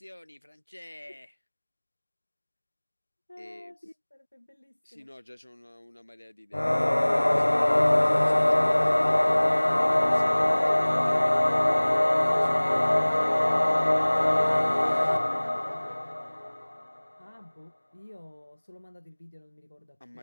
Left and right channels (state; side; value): inverted; both; correlation -1.00